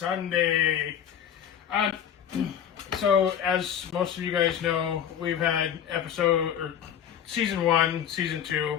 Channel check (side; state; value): right; quieter; 9.2 dB